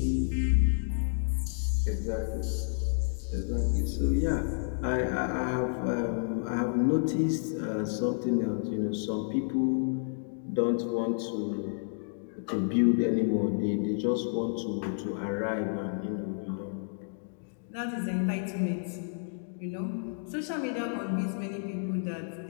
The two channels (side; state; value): right; silent; digital silence